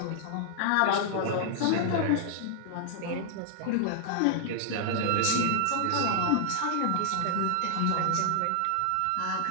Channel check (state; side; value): different; both; correlation -0.01